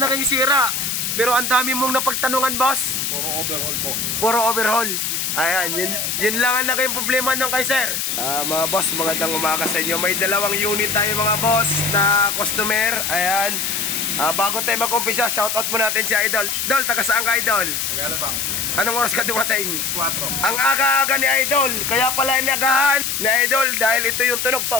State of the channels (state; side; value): noise; left; hiss, 1 dB below the sound